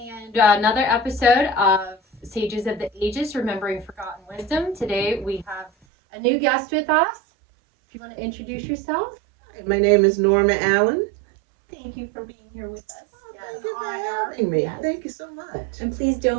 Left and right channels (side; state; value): left; drops out; at 5.7 s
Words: another episode of Sages of the Ages, Remembering Forgotten Wisdom. Today we have a new guest with us. If you want to introduce yourself. My name is Norma Allen. Thank you for being here with us. Thank you for having me. Yes. Thank you so much. And please